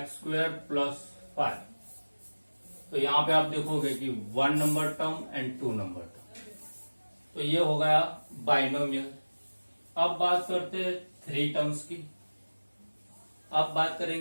+ 5। तो यहां पे आप देखोगे कि 1 number term and 2 number term, तो ये हो गया बाइनोमियल। अब बात करते हैं 3 टर्म्स की। अब बात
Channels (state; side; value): inverted; both; correlation -1.00